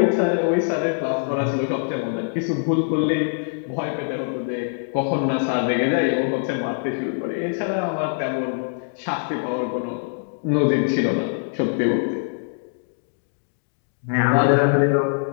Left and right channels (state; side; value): silent; right; digital silence